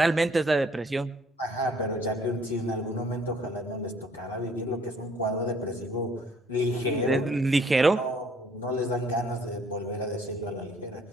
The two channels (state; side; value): normal; both; correlation 0.61